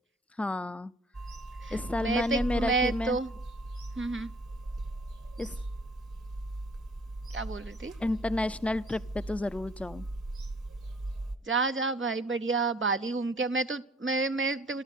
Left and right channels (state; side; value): normal; both; correlation 0.57